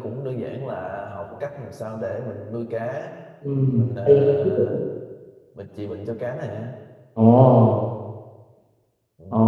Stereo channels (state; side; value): identical; both; correlation 1.00